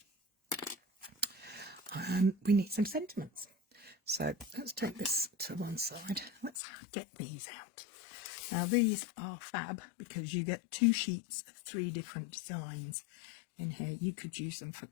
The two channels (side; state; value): right; drops out; at 6.5 s